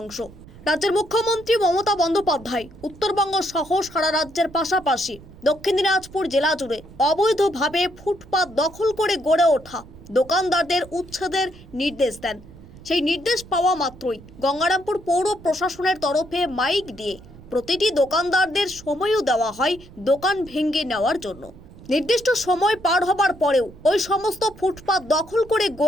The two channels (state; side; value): noise; right; rumble, 20 dB below the sound